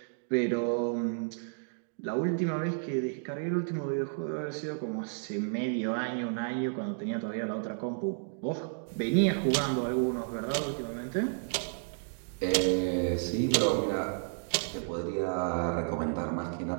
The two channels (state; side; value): silent; left; digital silence